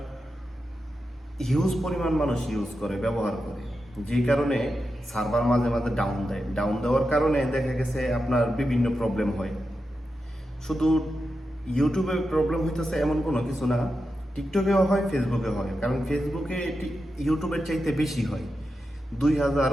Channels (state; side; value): normal; both; correlation 0.89